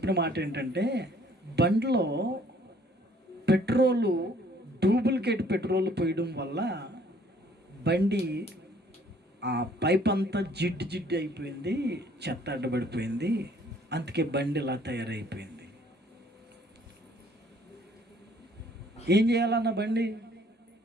మాట ఏంటంటే, బండిలో డూప్లికేట్ పెట్రోల్ పోయడం వల్ల బండి ఆ పైప్ అంతా జిడ్డు అయిపోయింది, చెత్త అడ్డబడిపోయింది, అందుకే బండి ఇలా తయారైపోయింది. ఏం చేయాలన్న బండి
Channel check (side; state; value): both; normal; correlation 0.59